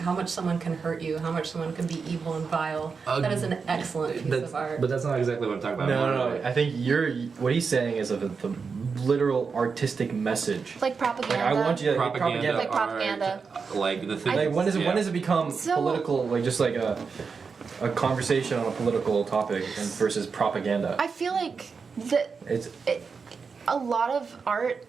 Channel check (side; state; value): left; quieter; 5.3 dB